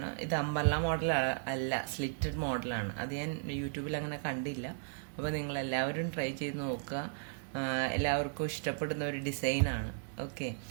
ഇത് അമ്പർല മോഡൽ അല്ല, സ്ലിറ്റഡ് മോഡലാണ്. അത് ഞാൻ യൂട്യൂബിൽ അങ്ങനെ കണ്ടില്ല. അപ്പോൾ നിങ്ങൾ എല്ലാവരും ട്രൈ ചെയ്ത് നോക്കുക. എല്ലാവർക്കും ഇഷ്ടപ്പെടുന്ന ഒരു ഡിസൈനാണ്. ഓക്കെ,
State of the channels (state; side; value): silent; left; digital silence